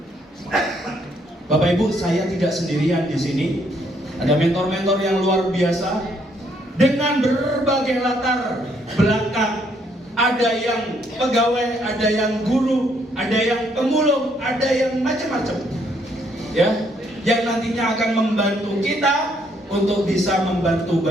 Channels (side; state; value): both; normal; correlation 0.70